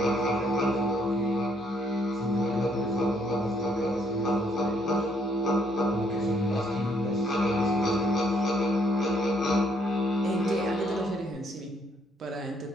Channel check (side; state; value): both; normal; correlation 0.69